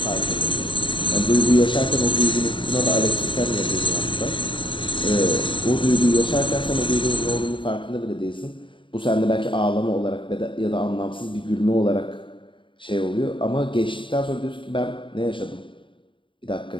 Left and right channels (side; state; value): right; late; 0.24 ms